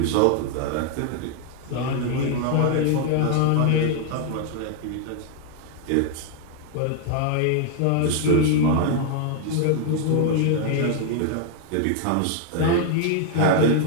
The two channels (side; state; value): both; different; correlation 0.00